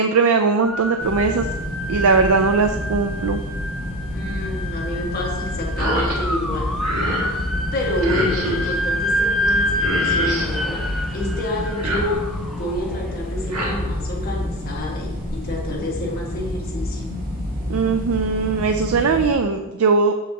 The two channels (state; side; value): normal; both; correlation 0.21